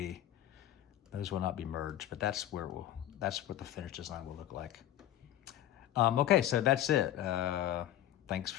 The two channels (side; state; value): right; quieter; 12.4 dB